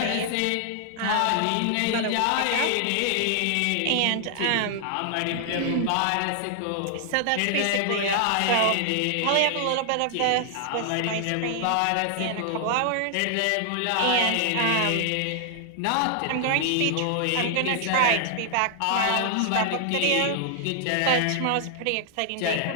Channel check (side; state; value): both; different; correlation 0.00